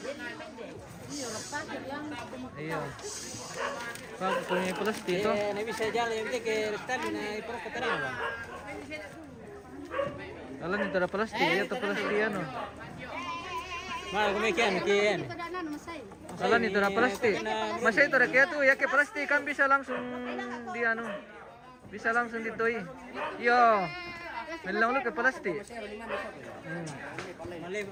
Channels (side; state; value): both; identical; correlation 1.00